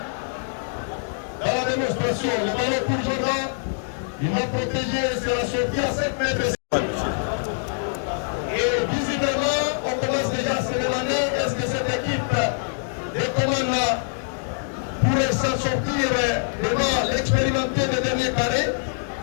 dans la démonstration. Le ballon pour Jordan. Il va protéger, sera sorti à 7 mètres. Et visiblement, on commence déjà à se demander est-ce que cette équipe de commande pourrait s'en sortir devant l'expérimenté des derniers carrés.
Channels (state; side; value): silent; right; digital silence